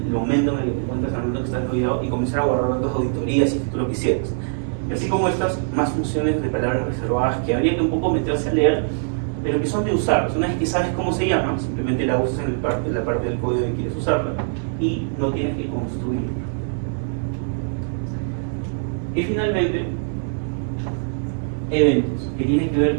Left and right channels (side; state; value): left; silent; digital silence